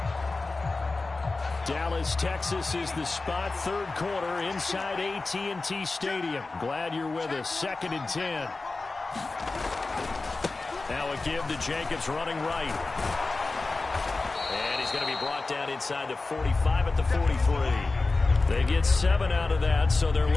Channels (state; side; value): quieter; right; 3.5 dB